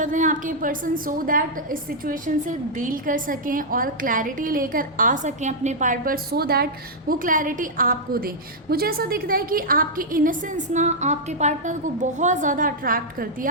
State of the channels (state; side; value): normal; both; correlation -0.07